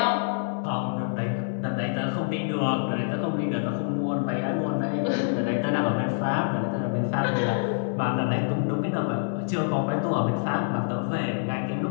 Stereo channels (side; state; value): right; silent; digital silence